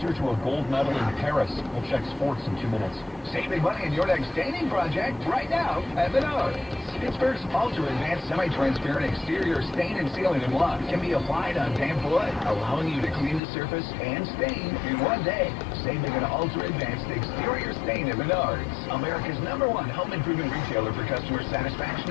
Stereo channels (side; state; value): right; drops out; at 13.4 s